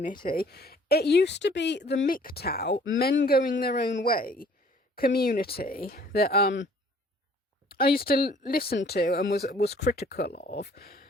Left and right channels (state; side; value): normal; both; correlation 0.56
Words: it used to be the MGTOW, men going their own way community, that I used to listen to and was critical of.